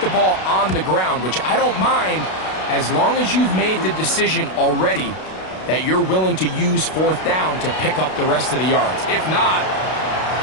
ball on the ground, which I don't mind as long as you've made the decision already that you're willing to use fourth down to pick up the rest of the yards. If not,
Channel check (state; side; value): late; right; 32 ms